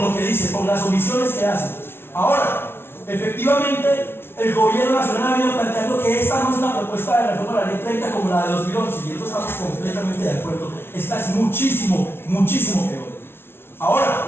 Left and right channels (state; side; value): late; right; 0.11 ms